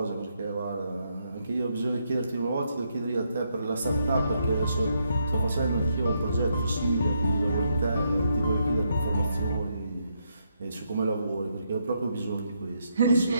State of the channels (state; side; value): inverted; both; correlation -0.78